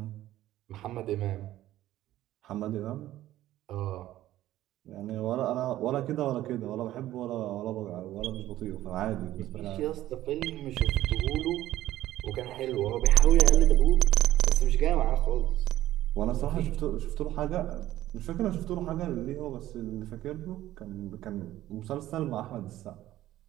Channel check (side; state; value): left; quieter; 14.3 dB